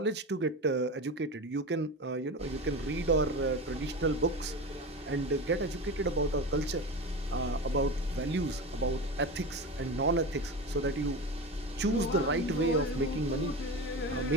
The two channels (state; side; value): normal; both; correlation 0.25